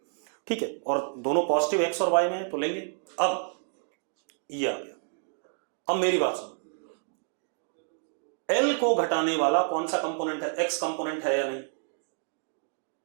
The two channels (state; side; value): silent; left; 58 dB below the other